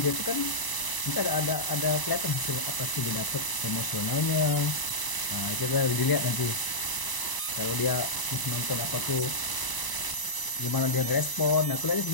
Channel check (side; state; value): right; late; 1.0 ms